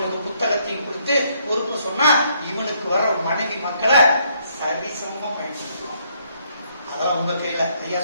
புத்தகத்தையும் கொடுத்து பொறுப்பு சொன்னா இவனுக்கு வர மனைவி மக்களை சரிசமமா பயன்படுத்துவான். அதான் உங்க கையில. ஐயா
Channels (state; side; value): inverted; both; correlation -0.70